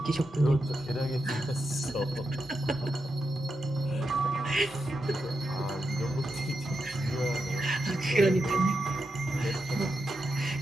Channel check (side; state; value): both; normal; correlation 0.87